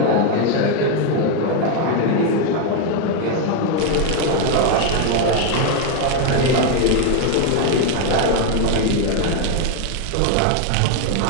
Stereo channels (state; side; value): different; both; correlation 0.01